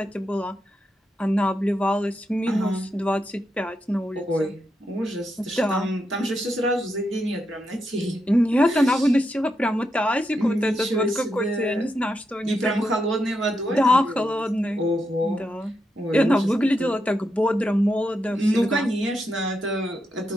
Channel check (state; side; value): normal; both; correlation 0.84